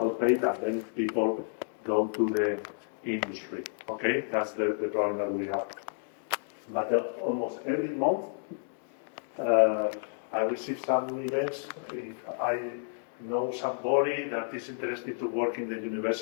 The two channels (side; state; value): right; silent; digital silence